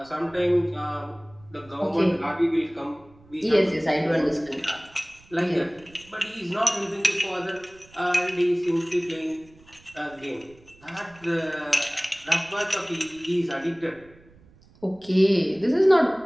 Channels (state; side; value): noise; right; rumble, 27 dB below the sound